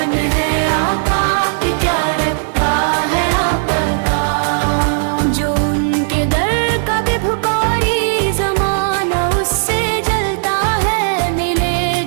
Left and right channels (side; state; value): left; silent; digital silence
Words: ہے آقا کی، کیا رکھتا ہے آپ کا۔ جو ان کے در کا بھی بھکاری زمانہ اس سے جلتا ہے، ملے